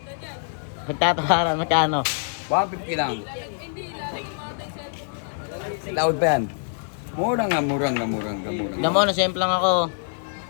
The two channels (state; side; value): silent; right; 62 dB below the other